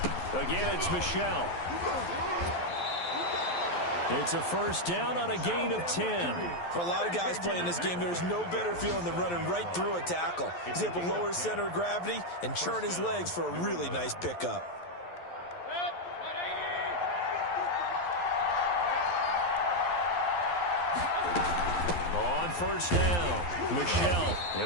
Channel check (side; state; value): right; late; 11 ms